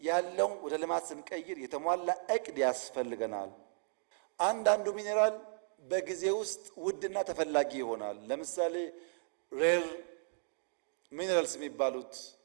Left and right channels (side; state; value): left; silent; digital silence